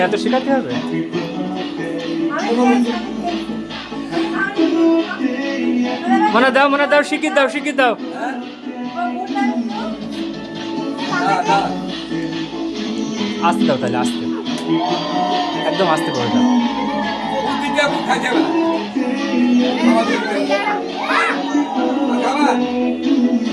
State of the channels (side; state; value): both; identical; correlation 1.00